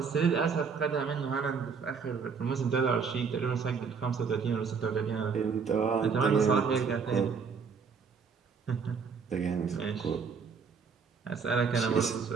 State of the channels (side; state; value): left; quieter; 5.8 dB